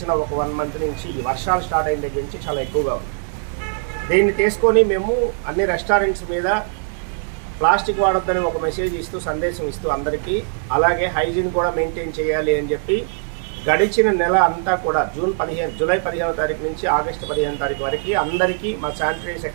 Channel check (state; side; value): silent; left; 65 dB below the other